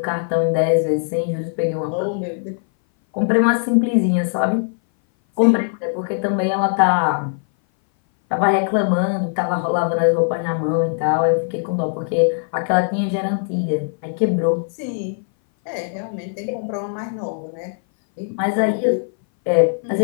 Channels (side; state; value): right; silent; 60 dB below the other